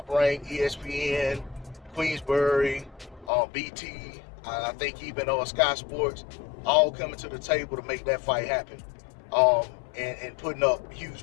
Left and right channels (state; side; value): drops out; right; at 3.3 s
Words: rank, ESPN, Queensbury, BT, I think even Sky Sports, all coming to the table to make that fight happen. And putting up